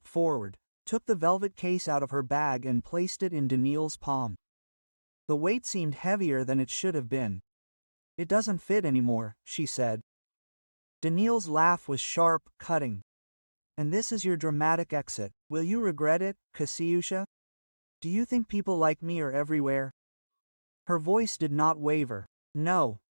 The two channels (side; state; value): both; inverted; correlation -1.00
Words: forward, took the velvet case out of her bag and placed it in Daniil's palm. The weight seemed heavier than it should have been. It doesn't fit anymore, she said. Daniil's laugh was sharp, cutting. And this is your dramatic exit. Will you regret it, Kasyusha? Do you think people like me are everywhere? Her voice did not waver. No,